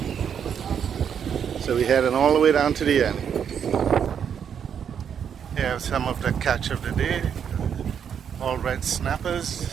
So we're heading all the way down to the end. Here are some of the catch of the day. All red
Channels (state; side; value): quieter; left; 7.9 dB